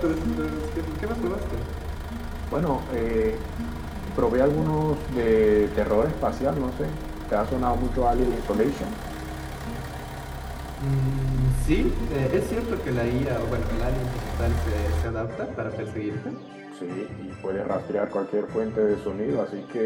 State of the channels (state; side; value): identical; both; correlation 1.00